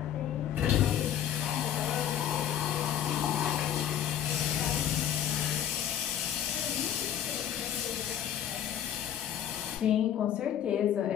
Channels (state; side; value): quieter; right; 10.2 dB